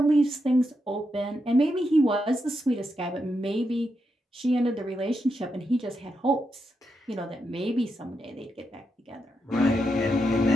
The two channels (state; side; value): normal; both; correlation 0.84